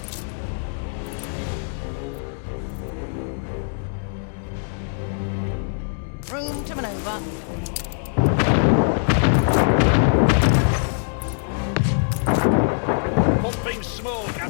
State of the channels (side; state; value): right; silent; digital silence